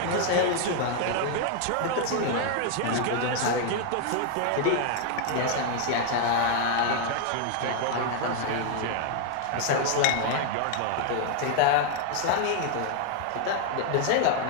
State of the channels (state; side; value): different; both; correlation 0.00